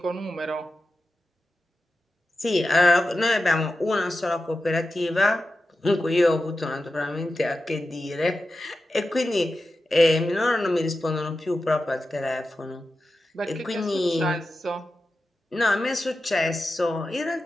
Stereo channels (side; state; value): both; normal; correlation 0.92